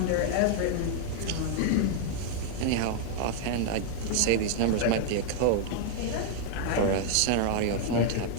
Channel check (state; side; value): different; both; correlation 0.00